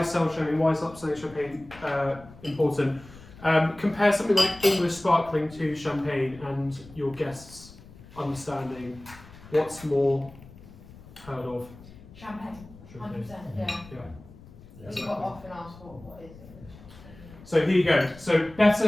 is sell champagne, why is upselling champagne important? Compare something like English sparkling to champagne and your guests understanding what's more heard of. Champagne, 100%, yeah. We got often asked what is English. So here you go. So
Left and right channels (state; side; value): noise; left; rumble, 20 dB below the sound